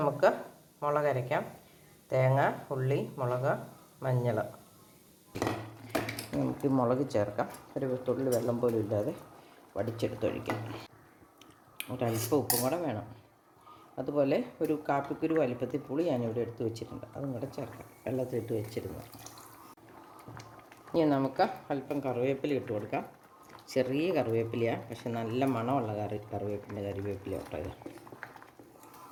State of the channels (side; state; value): both; identical; correlation 1.00